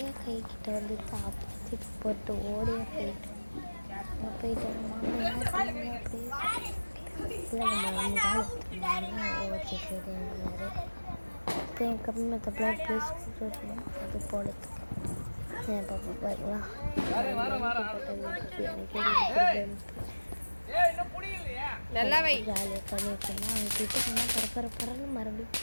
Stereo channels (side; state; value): both; inverted; correlation -1.00